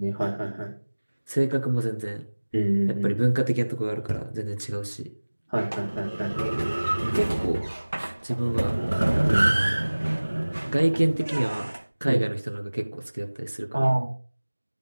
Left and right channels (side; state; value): both; inverted; correlation -1.00